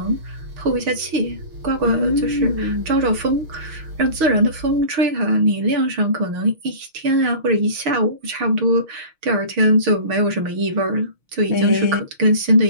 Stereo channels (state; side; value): late; left; 6.3 ms